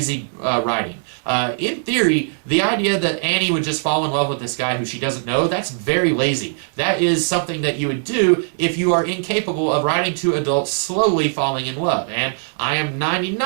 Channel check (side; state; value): left; silent; digital silence